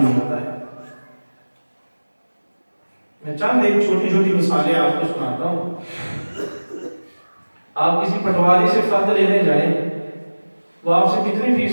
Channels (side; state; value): both; inverted; correlation -1.00